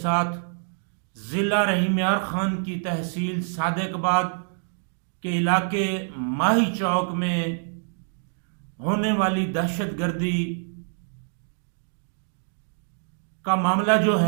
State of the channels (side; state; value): left; silent; digital silence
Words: ضلع رحیم یار خان کی تحصیل صادق آباد کے علاقے ماہی چوک میں ہونے والی دہشت گردی کا معاملہ جو